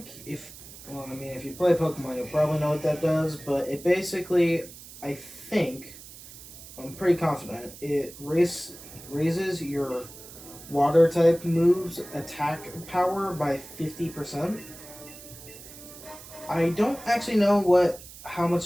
well, I mean, if you play Pokemon, you'll probably know what that does, but it basically, I'm pretty confident, it raises your water type moves attack power by 50%. I don't actually know how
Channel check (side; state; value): right; noise; hiss, 17 dB below the sound